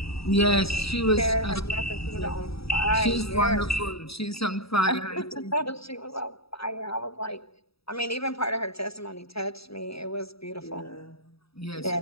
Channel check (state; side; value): late; right; 0.77 ms